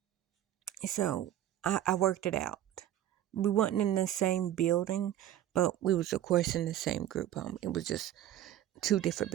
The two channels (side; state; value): left; quieter; 12.2 dB